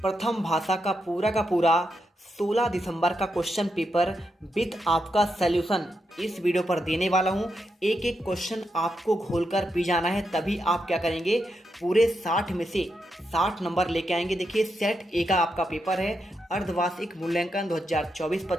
भाषा का पूरा 16 दिसंबर का क्वेश्चन पेपर विथ आपका सॉल्यूशन इस वीडियो पर देने वाला हूँ। एक एक क्वेश्चन आपको घोलकर पी जाना है, तभी आप क्या करेंगे, पूरे 60 में से 60 नंबर लेके आएंगे। देखिए, सेट ए का आपका पेपर है, अर्धवार्षिक मूल्यांकन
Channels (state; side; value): normal; both; correlation 0.84